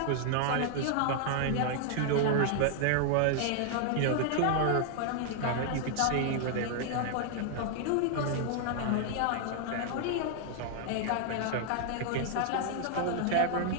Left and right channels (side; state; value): both; different; correlation 0.00